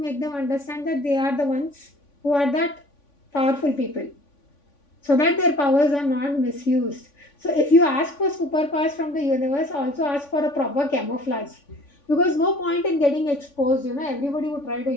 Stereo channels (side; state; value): right; late; 3.5 ms